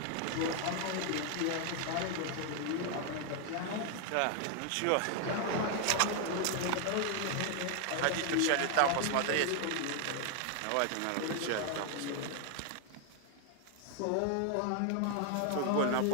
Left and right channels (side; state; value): both; different; correlation 0.00